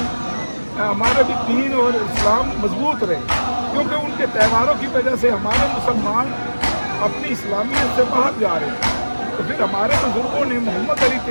दीन और इस्लाम मजबूत रहे, क्योंकि उनके त्यौहारों की वजह से हमारे मुसलमान अपनी इस्लामियत से बाहर जा रहे थे। तो फिर हमारे बुज़ुर्गों ने, मोहम्मद अली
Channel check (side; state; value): both; inverted; correlation -1.00